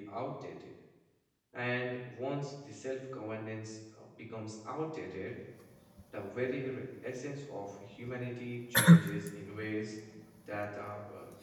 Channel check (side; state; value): both; identical; correlation 1.00